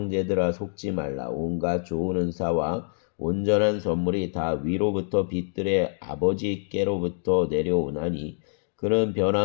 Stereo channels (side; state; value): right; silent; digital silence